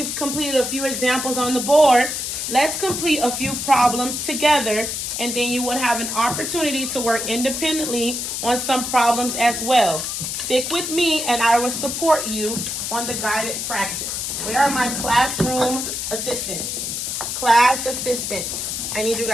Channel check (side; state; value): left; noise; hiss, 3 dB below the sound